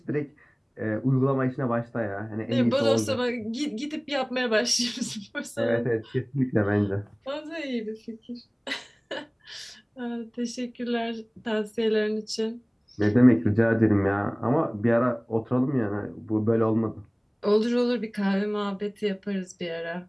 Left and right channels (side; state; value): both; identical; correlation 1.00